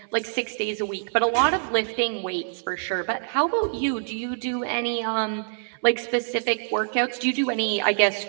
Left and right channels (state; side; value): silent; left; 62 dB below the other